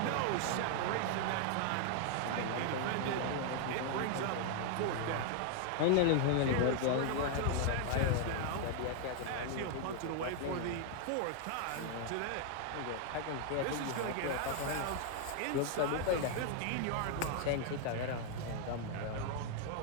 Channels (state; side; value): different; both; correlation 0.00